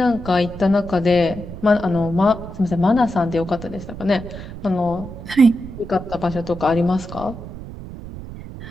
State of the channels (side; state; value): right; noise; rumble, 12 dB below the sound